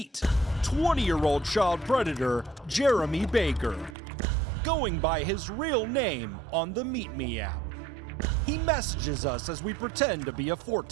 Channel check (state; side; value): drops out; left; at 4.0 s